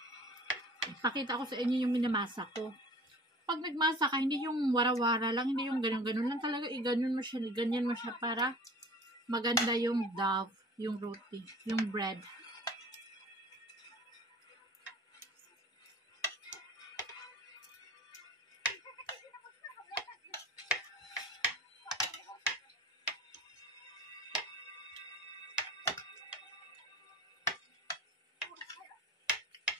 Pakita ko sa inyo yung minamasa ko. Pag nagmasa ka, hindi yung wara-wara lang, hindi yung ganun-ganun lang talaga. Ganyan mo siya para maganda yung dough, yung roti, yung bread.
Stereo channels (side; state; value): both; normal; correlation 0.45